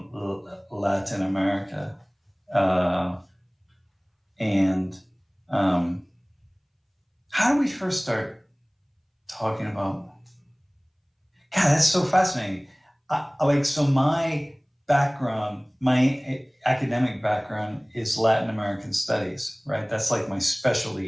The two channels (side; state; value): both; identical; correlation 1.00